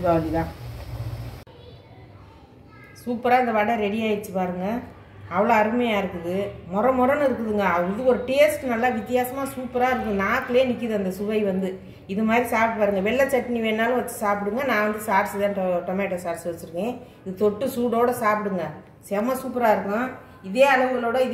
தான். சூப்பராக இந்த வடை ரெடி ஆகிடுச்சு பாருங்கள். அவ்வளோ அருமையாக இருக்குது. மொரன்னு இருக்குதுங்க. இது ஒரு டேஸ்ட் நல்லா வித்தியாசமாக சூப்பராக இருக்குது. நாக்கிலே நிற்கிது அந்த சுவை வந்து. இது மாதிரி சாப்பிட்டு பாருங்கள். வெள்ளை சட்னி வேணாலும் வச்சு சாப்பிடுங்க. நான் வந்து சாஸ் தான் டொமேட்டோ சாஸ் வச்சுருக்கேன். இது தொட்டு சூடோடு சாப்பிடுங்க. செம்ம சூப்பராக இருக்கும். இதே அளவுகளோட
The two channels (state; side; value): identical; both; correlation 1.00